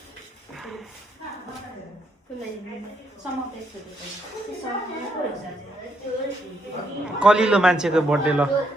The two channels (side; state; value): both; normal; correlation 0.75